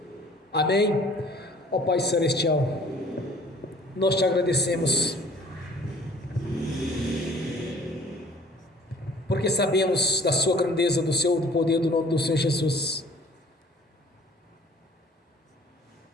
Amém? Ó Pai Celestial, nós te agradecemos, porque sabemos da sua grandeza, do poder do nome do Senhor Jesus.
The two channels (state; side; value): normal; both; correlation 0.52